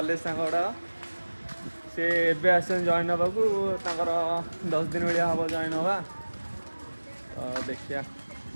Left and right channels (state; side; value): inverted; both; correlation -1.00